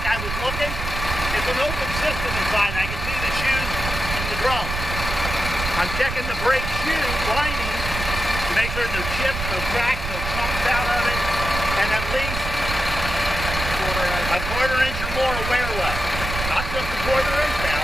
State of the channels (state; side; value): noise; right; rumble, 5 dB below the sound